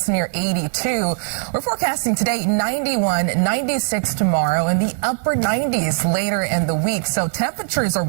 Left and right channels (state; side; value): silent; left; 66 dB below the other